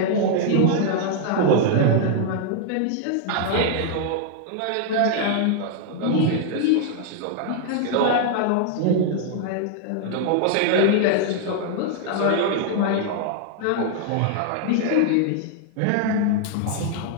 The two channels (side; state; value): both; different; correlation 0.00